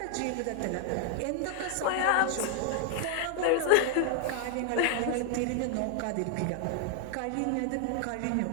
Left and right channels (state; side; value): different; both; correlation 0.00